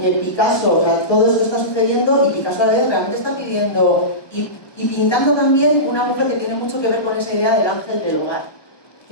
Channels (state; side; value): late; right; 1.2 ms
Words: que Picasso, o sea, todo esto está sucediendo y Picasso a la vez realmente está pidiendo y pintando también una mujer que tiene mucho que ver con esa idea del ángel del hogar,